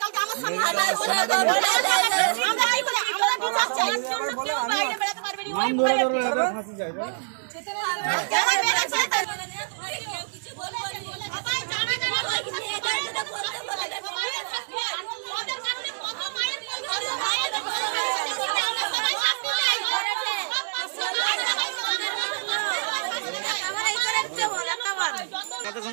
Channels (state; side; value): silent; left; digital silence